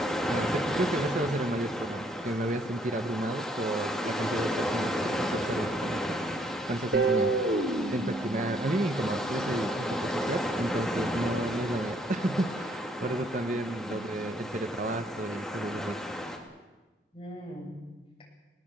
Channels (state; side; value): normal; both; correlation 0.66